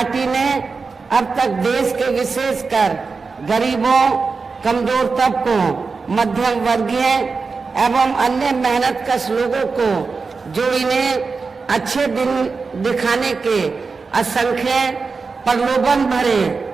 ने अब तक देश के विशेषकर गरीबों, कमजोर तबकों, मध्यम वर्गीय एवं अन्य मेहनतकश लोगों को जो इन्हें अच्छे दिन दिखाने के असंख्य प्रलोभन भरे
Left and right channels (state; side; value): quieter; left; 4.6 dB